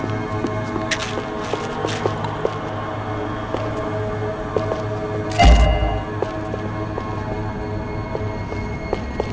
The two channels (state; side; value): identical; both; correlation 1.00